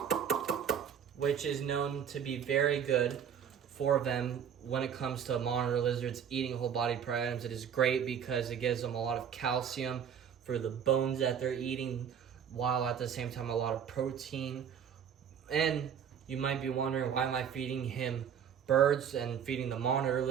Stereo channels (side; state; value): left; quieter; 8.1 dB